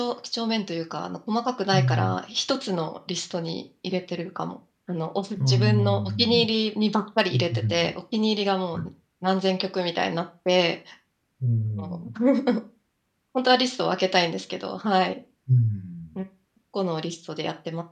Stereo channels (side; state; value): both; identical; correlation 1.00